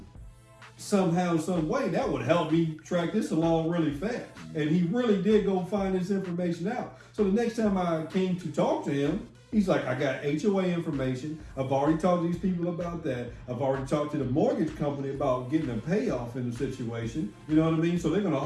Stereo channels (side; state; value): both; identical; correlation 1.00